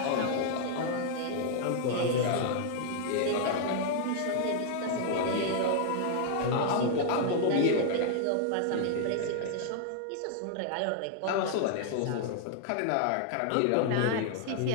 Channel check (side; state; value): both; different; correlation -0.01